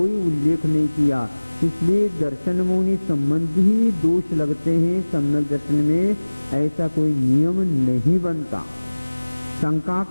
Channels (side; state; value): both; inverted; correlation -1.00